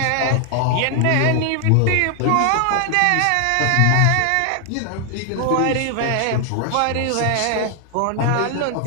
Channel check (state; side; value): different; both; correlation 0.00